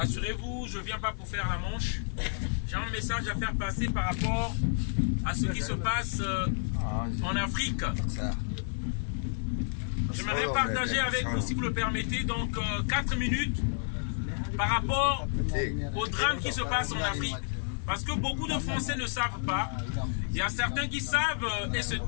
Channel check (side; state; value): right; silent; digital silence